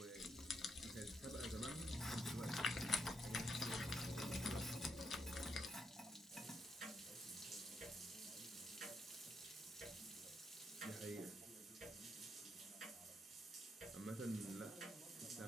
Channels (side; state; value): both; normal; correlation 0.77